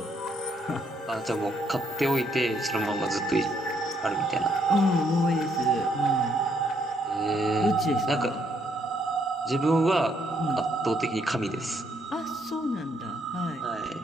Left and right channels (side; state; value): both; normal; correlation 0.71